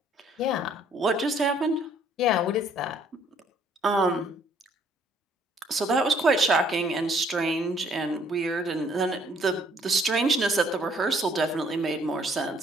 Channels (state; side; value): normal; both; correlation 0.62